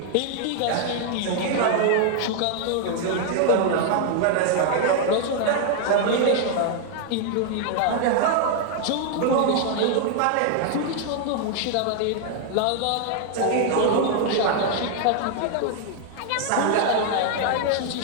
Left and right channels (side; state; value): both; different; correlation 0.00